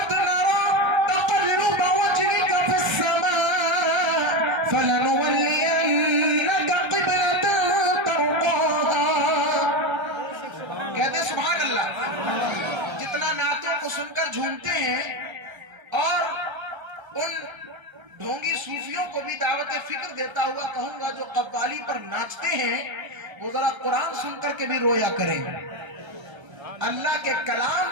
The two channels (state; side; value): late; left; 1.3 ms